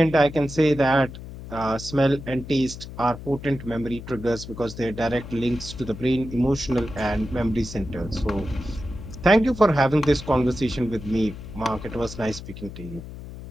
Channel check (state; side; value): noise; left; hum, 12 dB below the sound